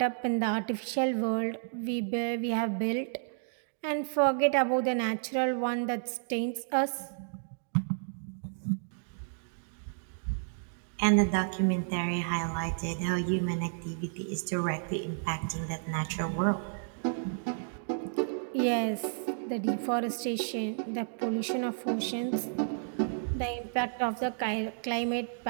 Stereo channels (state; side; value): silent; left; digital silence